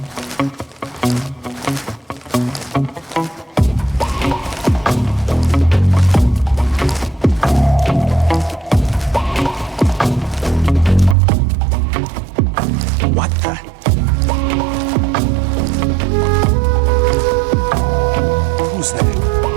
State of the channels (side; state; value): left; drops out; at 11.2 s